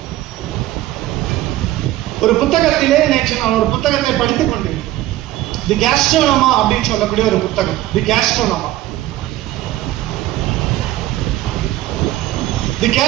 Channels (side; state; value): left; quieter; 15.4 dB